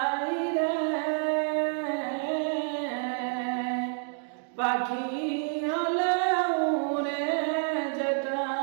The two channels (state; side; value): silent; left; 56 dB below the other